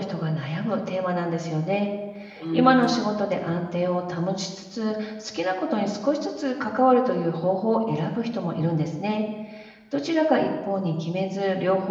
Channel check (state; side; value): identical; both; correlation 1.00